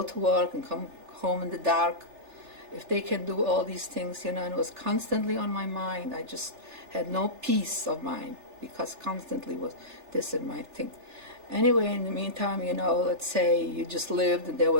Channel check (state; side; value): late; left; 3.4 ms